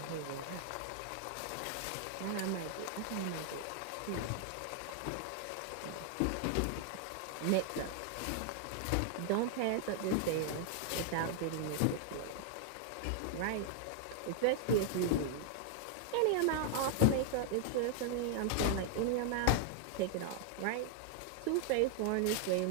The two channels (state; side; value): different; both; correlation 0.00